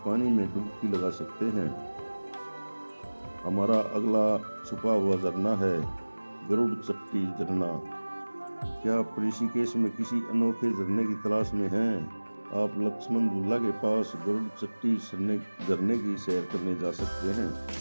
पानी में डुबकी लगा सकते हैं। हमारा अगला छुपा हुआ झरना है गरुड़ चट्टी झरना। क्या आप ऋषिकेश में किसी अनोखे झरने की तलाश में हैं? आप लक्ष्मण झूला के पास गरुड़ चट्टी झरने की सैर करने जा सकते हैं।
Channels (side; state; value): both; inverted; correlation -1.00